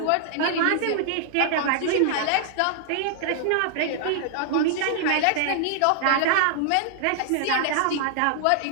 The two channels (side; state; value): both; different; correlation -0.01